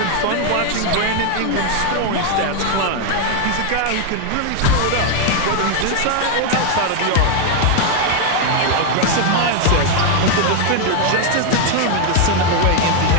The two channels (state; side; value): different; both; correlation 0.01